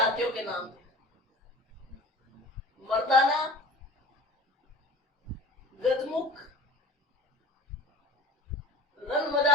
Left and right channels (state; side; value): normal; both; correlation 0.41